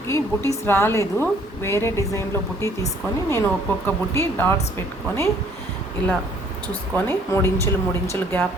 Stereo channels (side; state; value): both; normal; correlation 0.60